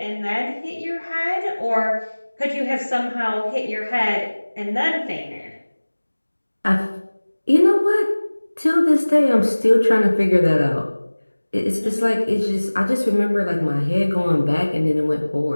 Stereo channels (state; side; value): inverted; both; correlation -1.00